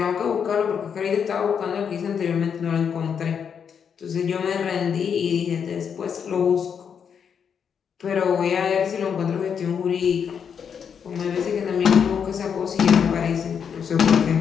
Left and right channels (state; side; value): quieter; right; 7.2 dB